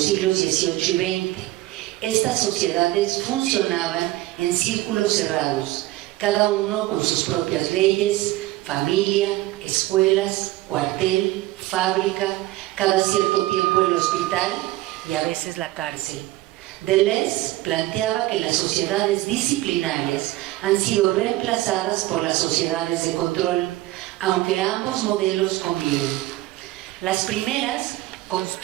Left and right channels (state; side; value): quieter; left; 17.2 dB